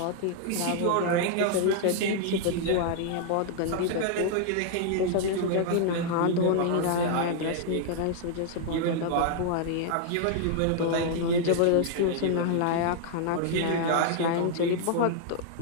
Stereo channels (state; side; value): different; both; correlation -0.01